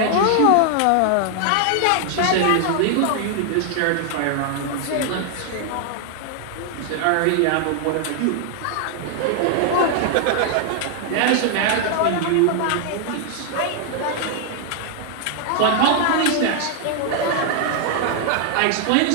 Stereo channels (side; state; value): both; different; correlation 0.00